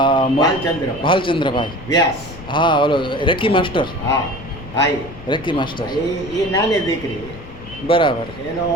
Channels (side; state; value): left; noise; rumble, 15 dB below the sound